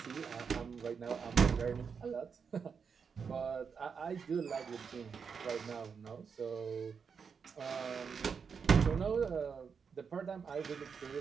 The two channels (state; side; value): quieter; left; 6.1 dB